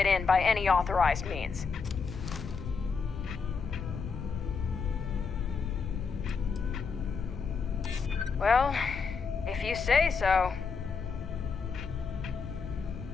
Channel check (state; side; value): quieter; right; 5.3 dB